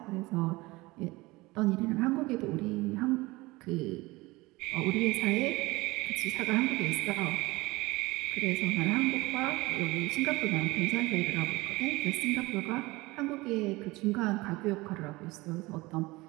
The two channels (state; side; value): quieter; left; 21.6 dB